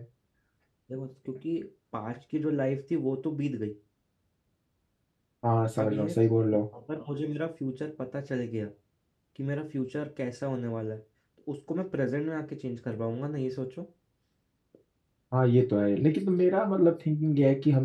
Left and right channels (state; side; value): identical; both; correlation 1.00